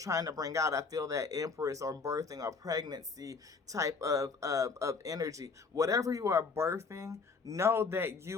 to bring out, I feel that Empress or birthing or pregnancy type of energy, whatever you are birthing, know that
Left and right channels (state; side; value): quieter; right; 4.7 dB